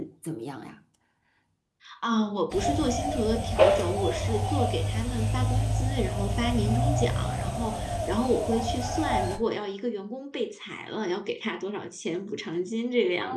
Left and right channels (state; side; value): identical; both; correlation 1.00